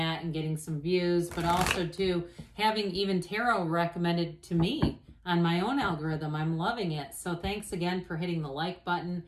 and getting some views, but also to having even tarot recommended to me on my own algorithm. I'm loving it. So thanks again for hitting the like button.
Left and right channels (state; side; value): identical; both; correlation 1.00